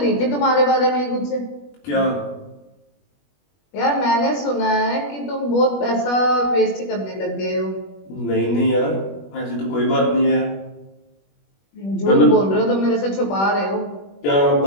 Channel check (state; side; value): late; right; 21 ms